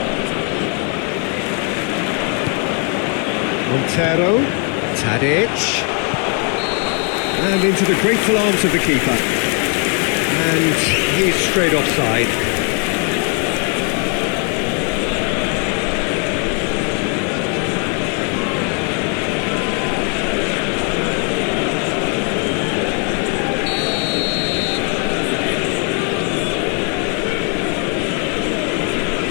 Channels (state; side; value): quieter; right; 37.7 dB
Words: Montero. Tadic. And into the grateful arms of the keeper. And he's straight offside.